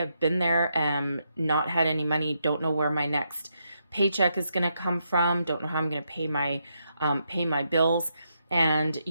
been there, not had any money, don't know where my next paycheck is going to come from, don't know how I'm going to pay my bills. And,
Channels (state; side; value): inverted; both; correlation -0.80